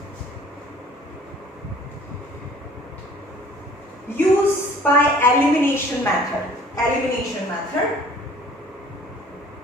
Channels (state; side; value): normal; both; correlation 0.52